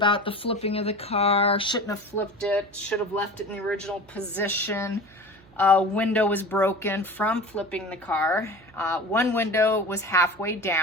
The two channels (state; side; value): noise; right; hum, 27 dB below the sound